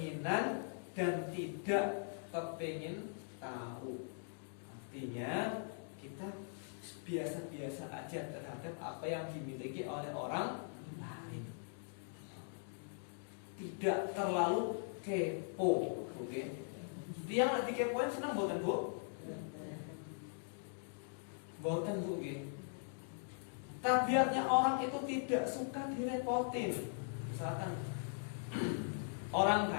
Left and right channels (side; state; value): right; silent; digital silence